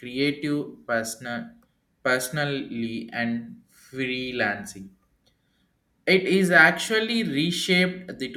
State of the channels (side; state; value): both; identical; correlation 1.00